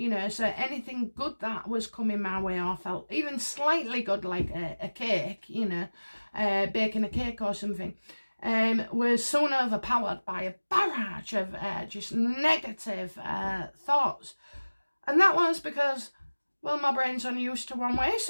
so anything good that was coming my way, or felt even slightly good, like a cake, baking a cake or something, was soon overpowered by a barrage of just negative thoughts. And that was because, well, my brain's only used to one way.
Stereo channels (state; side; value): inverted; both; correlation -1.00